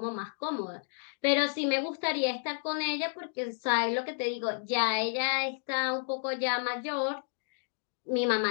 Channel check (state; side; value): silent; right; digital silence